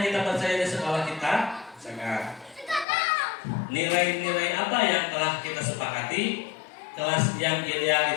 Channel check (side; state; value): right; drops out; at 2.9 s